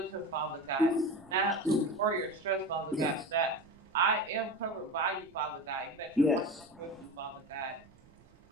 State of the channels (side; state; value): right; noise; rumble, 27 dB below the sound